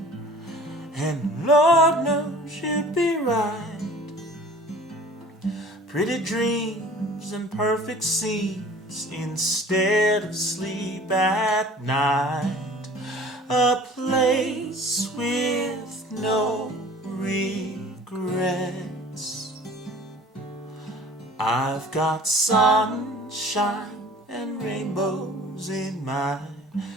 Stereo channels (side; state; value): both; normal; correlation 0.46